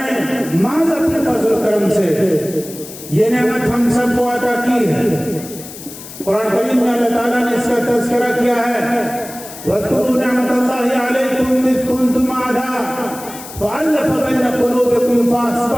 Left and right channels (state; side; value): noise; left; hiss, 14 dB below the sound